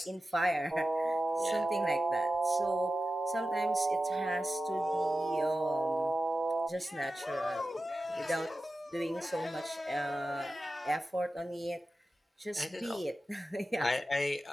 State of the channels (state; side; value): normal; both; correlation 0.93